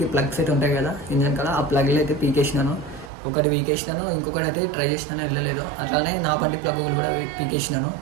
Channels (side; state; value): left; drops out; at 3.1 s